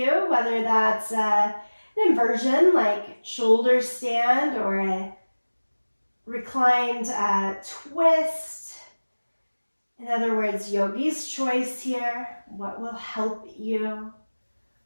whether that's an inversion like shoulder stand or a reclined twist. In other words, yogi's choice here. What will help you?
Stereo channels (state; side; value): inverted; both; correlation -1.00